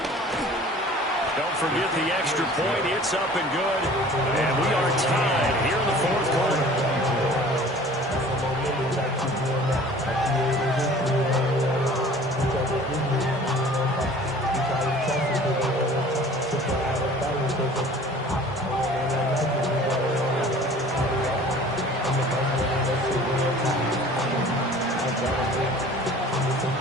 Don't forget the extra point. It's up and good. And we are tied here in the 4th quarter.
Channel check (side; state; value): both; normal; correlation 0.47